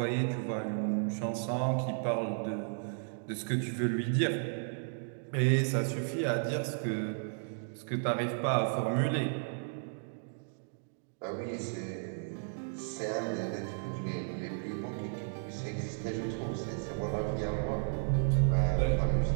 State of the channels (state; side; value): silent; left; digital silence